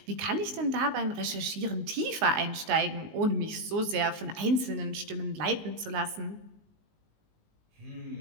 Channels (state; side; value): late; left; 19 ms